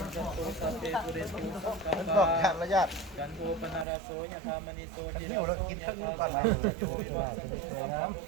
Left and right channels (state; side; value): drops out; left; at 3.9 s